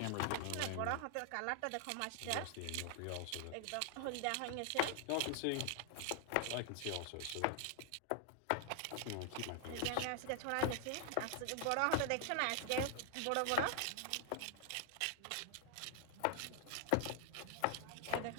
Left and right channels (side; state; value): both; different; correlation 0.00